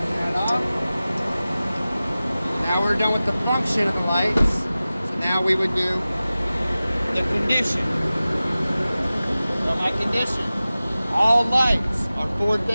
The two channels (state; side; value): inverted; both; correlation -0.96